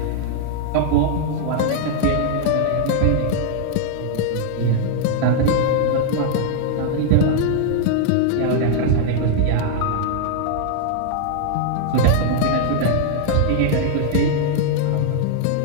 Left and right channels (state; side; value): different; both; correlation 0.00